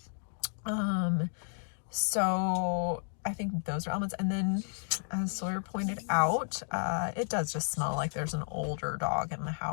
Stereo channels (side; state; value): right; silent; digital silence